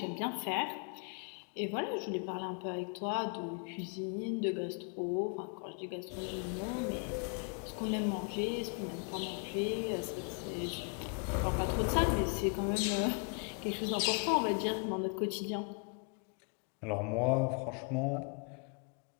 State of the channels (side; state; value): right; quieter; 38.9 dB